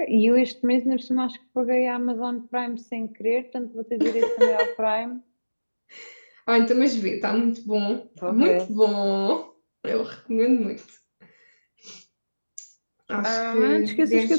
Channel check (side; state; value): both; inverted; correlation -1.00